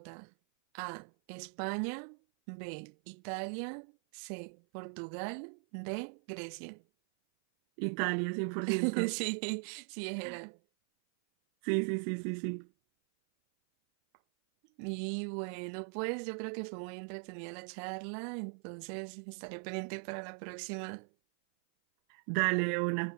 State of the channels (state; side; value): silent; left; 52 dB below the other